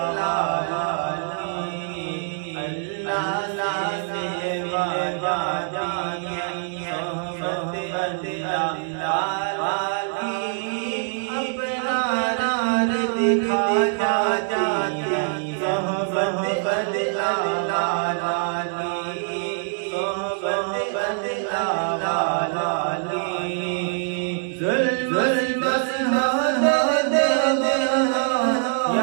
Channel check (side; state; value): left; silent; 63 dB below the other